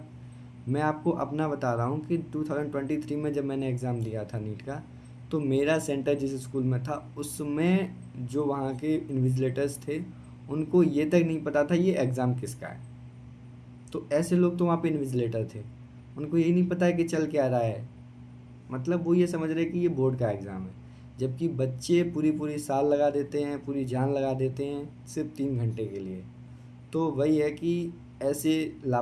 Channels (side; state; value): both; identical; correlation 1.00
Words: मैं आपको अपना बता रहा हूँ कि 2023 में जब मैंने एग्ज़ाम दिया था नीट का, तो मेरा सेंटर जिस स्कूल में था उसमें जो वहाँ के इन्विजिलेटर्स थे, उनको ये तक नहीं पता था ये एग्ज़ाम किसका है। तो ऐसे लोग तो वहाँ पे इन्विजिलेटर थे, उनको यही नहीं पता है कि चल क्या रहा है। मतलब वो ये समझ रहे कि ये बोर्ड का एग्ज़ाम है, जबकि बच्चे पूरी पूरी साल लगा देते हैं, पूरी जान लगा देते हैं सिर्फ 3 घंटे के लिए। तो वही है कि ऐसे